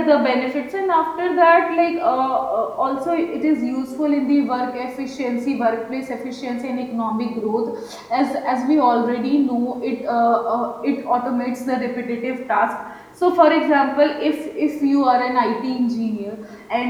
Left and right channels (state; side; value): identical; both; correlation 1.00